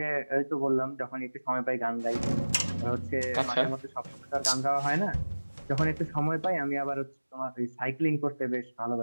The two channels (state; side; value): inverted; both; correlation -1.00